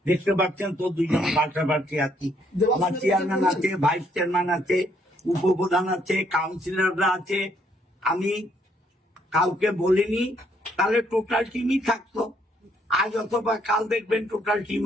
দেখতে পাচ্ছেন তো, 2 জন পাল্টাপাল্টি আছি। আমার চেয়ারম্যান আছে, ভাইস চেয়ারম্যান আছে, উপপ্রধান আছে, কাউন্সিলররা আছে। আমি কাউকে বলিনি, তাহলে টোটাল টিমই থাকতো। আজ অথবা কাল দেখবেন টোটাল টিম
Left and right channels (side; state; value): both; normal; correlation 0.69